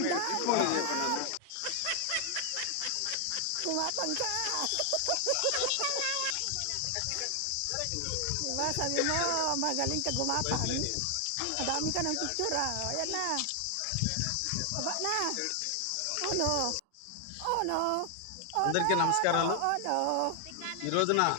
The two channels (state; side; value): different; both; correlation 0.00